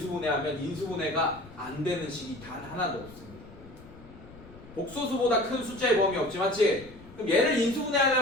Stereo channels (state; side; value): noise; left; rumble, 20 dB below the sound